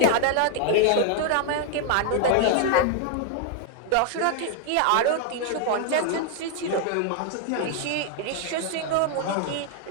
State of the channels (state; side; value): different; both; correlation 0.00